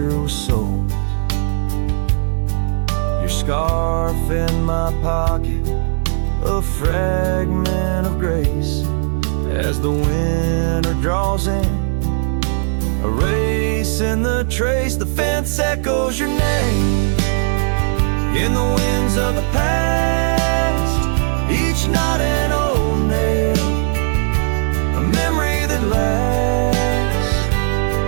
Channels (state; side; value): silent; left; digital silence